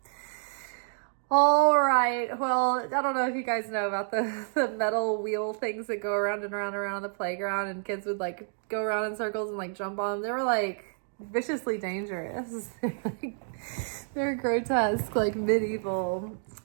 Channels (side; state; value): left; silent; digital silence